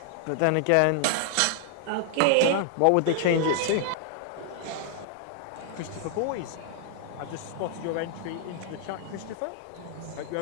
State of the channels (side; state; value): both; different; correlation 0.00